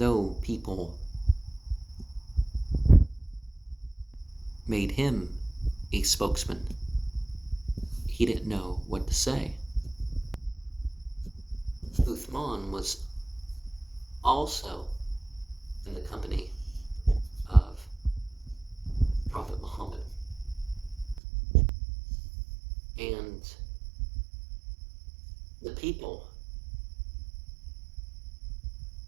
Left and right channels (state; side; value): drops out; left; at 21.2 s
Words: people made him a spokesman, he didn't know what to say. Uthman was also in the company of Prophet Muhammad, and the people